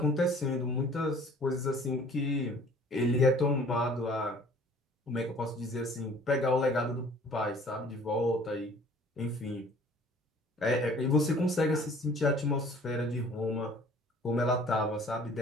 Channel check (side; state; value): both; normal; correlation 0.52